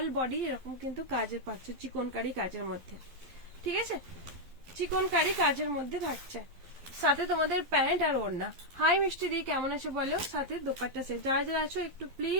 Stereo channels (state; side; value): late; left; 12 ms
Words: বডি এরকম কিন্তু কাজের পাচ্ছে, চিকনকারি কাজের মধ্যে। ঠিক আছে, চিকনকারি কাজের মধ্যে থাকছে, সাথে তোমাদের প্যান্ট আর ওড়না। হাই মিষ্টি দি, কেমন আছে বলো, সাথে দোপাট্টা সেট। যারা যারা আছো একটু